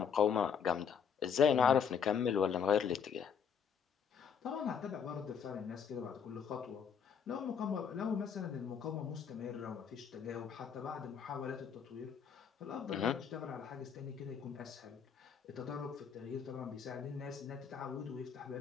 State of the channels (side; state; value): right; quieter; 7.2 dB